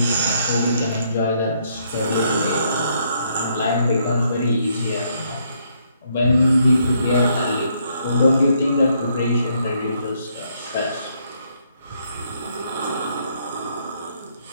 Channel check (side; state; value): both; inverted; correlation -0.72